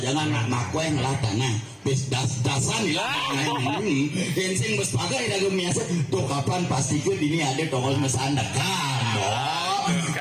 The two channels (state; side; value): identical; both; correlation 1.00